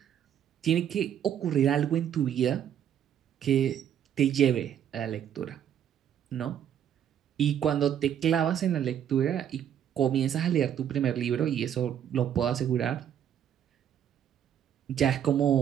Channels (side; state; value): left; quieter; 9.6 dB